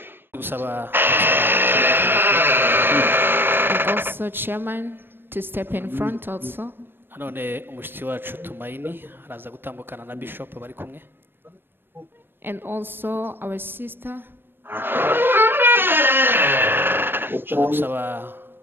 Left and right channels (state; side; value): late; left; 0.10 ms